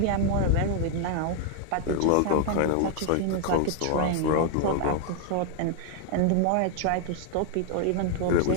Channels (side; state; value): both; different; correlation 0.00